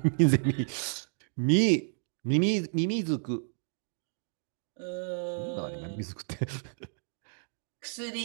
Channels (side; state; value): left; silent; digital silence